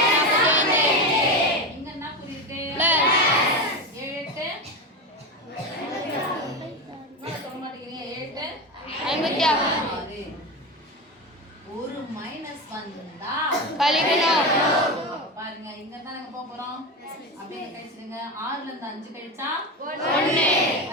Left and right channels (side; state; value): both; normal; correlation 0.19